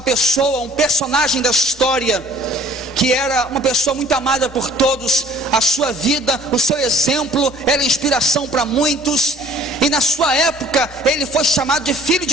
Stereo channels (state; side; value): normal; both; correlation 0.53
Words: pessoa, um personagem da história, que era uma pessoa muito amada por todos. A sua vida, o seu exemplo era inspiração para muitos, e na sua época ele foi chamado de Filho